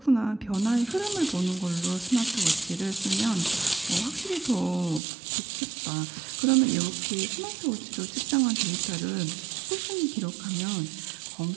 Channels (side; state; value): left; drops out; at 5.0 s